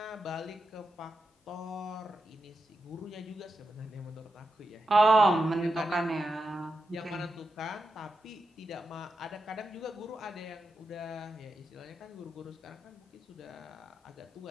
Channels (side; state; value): both; normal; correlation 0.88